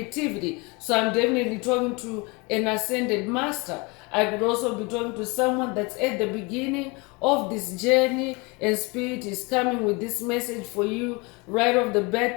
So I'm definitely talking to an ascended master. I could also be talking to someone that's at the beginning of this journey, and spirit is coming with this message for you right off the bat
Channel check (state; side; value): quieter; right; 27.6 dB